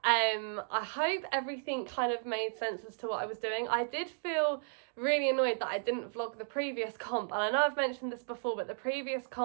I hope everything kind of made sense as to what I was doing. I did feel really annoyed that I didn't vlog the previous comp, and I know I've mentioned this before, but the previous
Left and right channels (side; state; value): left; silent; digital silence